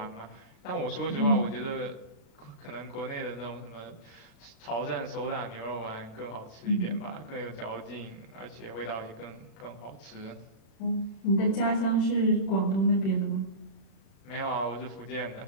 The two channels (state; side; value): late; right; 36 ms